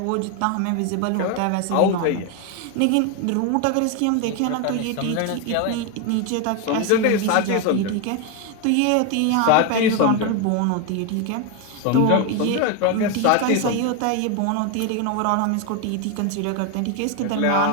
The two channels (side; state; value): both; different; correlation 0.02